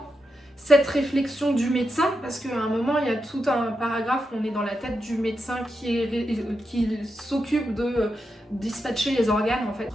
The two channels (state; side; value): normal; both; correlation 0.86